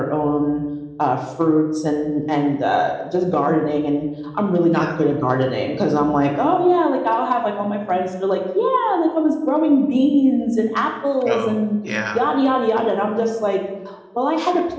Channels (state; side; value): identical; both; correlation 1.00